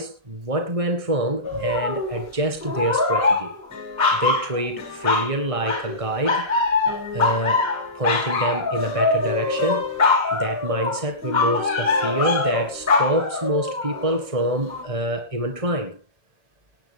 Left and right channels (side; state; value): left; late; 1.6 ms